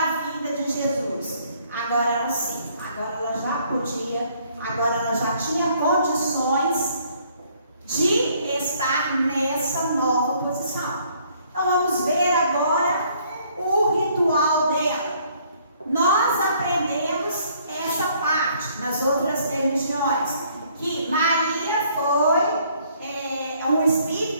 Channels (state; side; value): inverted; both; correlation -0.63